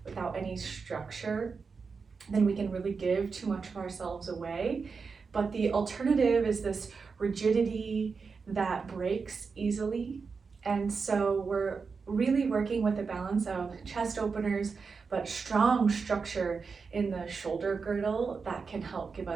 without any structure, then we can really give too much of ourselves away. But the alternative is this rigidity that breaks easily. And so we're really working with a balance of chest openers, but strong structure in the shoulder girdle that can help give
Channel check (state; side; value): quieter; left; 5.1 dB